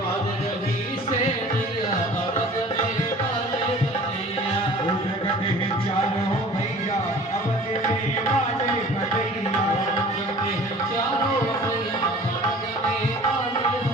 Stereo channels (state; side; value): normal; both; correlation 0.46